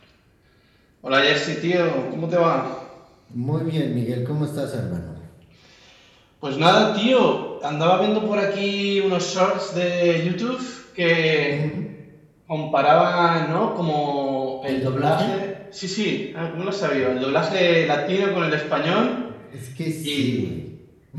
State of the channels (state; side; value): identical; both; correlation 1.00